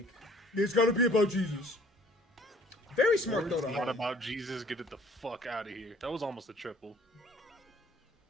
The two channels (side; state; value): both; normal; correlation 0.56